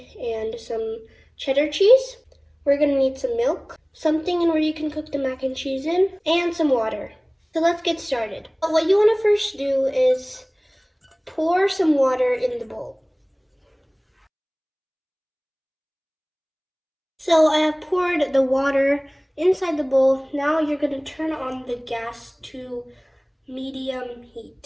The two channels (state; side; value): identical; both; correlation 1.00